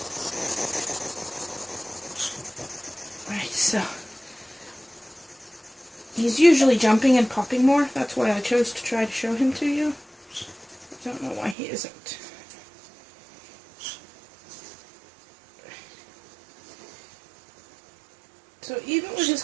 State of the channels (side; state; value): left; drops out; at 11.6 s